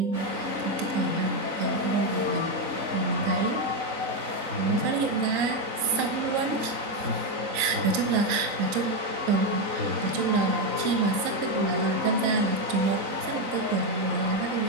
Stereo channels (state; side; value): late; left; 3.9 ms